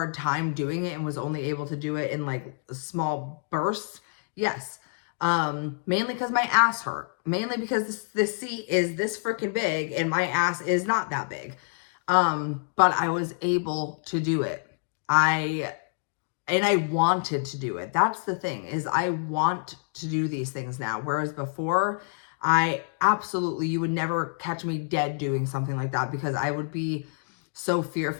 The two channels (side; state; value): right; silent; digital silence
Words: time doing it and was only able to do it in like small bursts? Yes. Mainly because my ass hurt. Mainly because this seat is this freaking big and my ass is not that big. But I was able to do it. And I wanted to do it. That's the thing, is I want to do these things now. Whereas before, you would never catch me dead doing something like that because I would be so